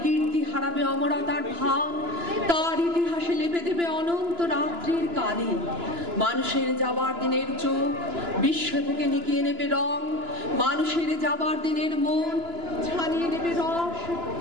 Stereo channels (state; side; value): late; left; 2.9 ms